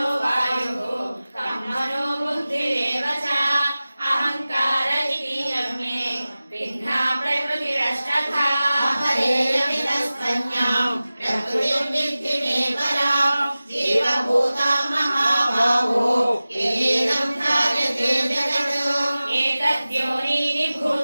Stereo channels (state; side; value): inverted; both; correlation -0.97